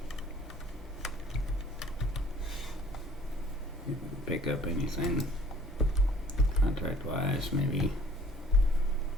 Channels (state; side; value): normal; both; correlation 0.54